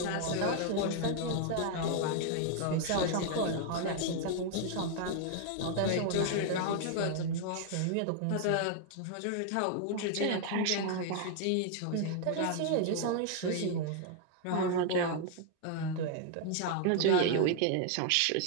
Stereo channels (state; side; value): different; both; correlation 0.00